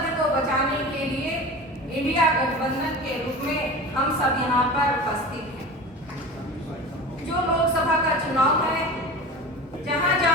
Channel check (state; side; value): normal; both; correlation 0.33